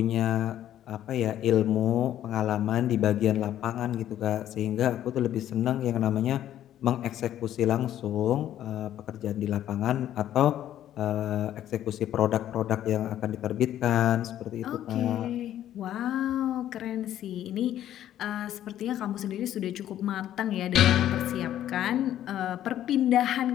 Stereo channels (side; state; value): right; quieter; 11.8 dB